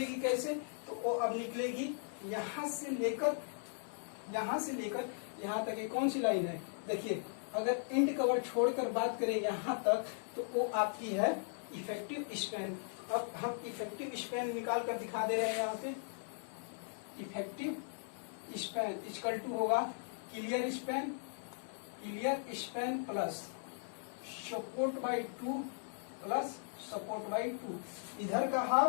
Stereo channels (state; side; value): silent; right; digital silence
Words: कैसे, तो वो अब निकलेगी यहाँ से लेकर यहाँ तक। ये कौन सी लाइन है, देखिए, अगर एंड कवर छोड़कर बात करें यहाँ तक तो वो आपकी है इफेक्टिव स्पैन। अब हम इफेक्टिव स्पैन निकाल कर दिखा दे रहे हैं। यहाँ पे इफेक्टिव स्पैन इक्वल टू होगा clear span plus support by 2 plus support by 2। इधर का